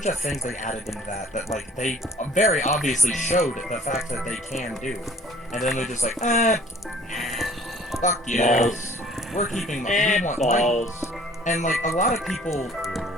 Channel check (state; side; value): normal; both; correlation 0.52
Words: of things they added into that like they very obviously showed the fact that they can do, and then they're just like, fuck you, we're keeping we want balls. And like a lot of people,